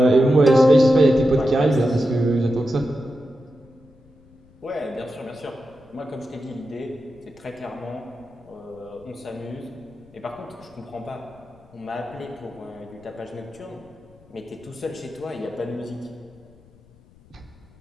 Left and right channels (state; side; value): noise; left; rumble, 27 dB below the sound